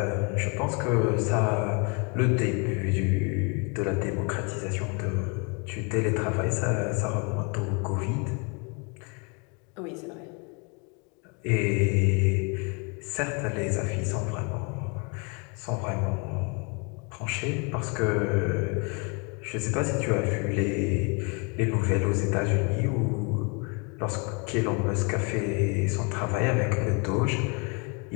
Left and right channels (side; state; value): right; quieter; 33.2 dB